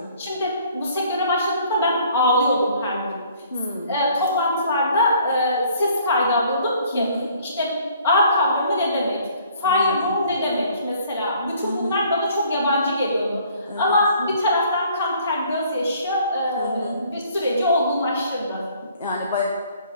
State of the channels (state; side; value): inverted; both; correlation -0.58